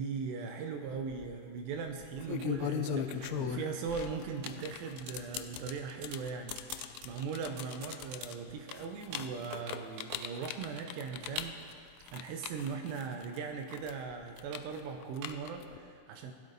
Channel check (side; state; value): left; late; 23 ms